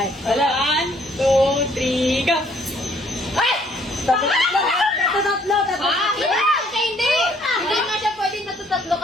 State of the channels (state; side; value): normal; both; correlation 0.63